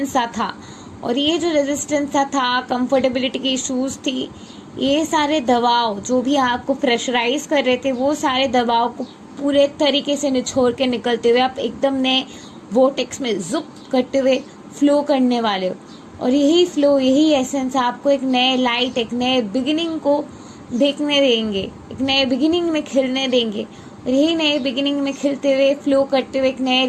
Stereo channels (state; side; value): identical; both; correlation 1.00